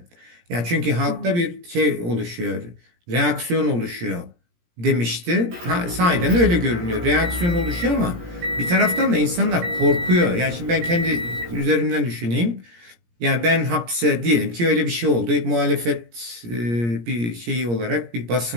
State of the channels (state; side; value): late; left; 17 ms